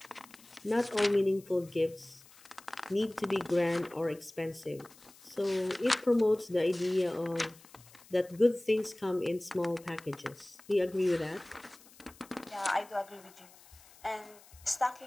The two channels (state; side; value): noise; left; hiss, 24 dB below the sound